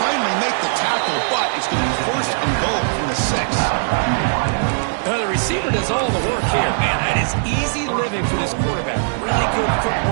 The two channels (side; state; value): left; silent; digital silence